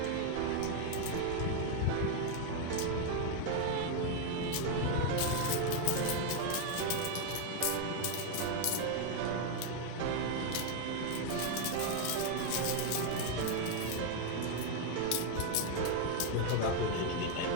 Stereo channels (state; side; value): different; both; correlation 0.01